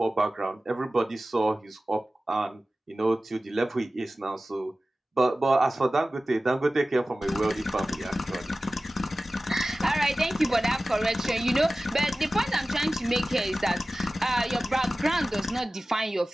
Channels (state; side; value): normal; both; correlation 0.96